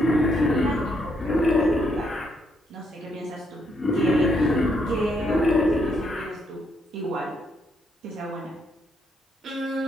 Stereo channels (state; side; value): normal; both; correlation 0.76